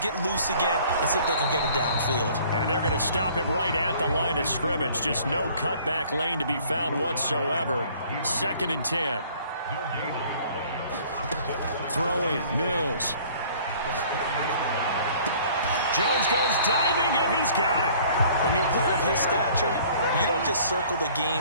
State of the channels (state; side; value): inverted; both; correlation -0.54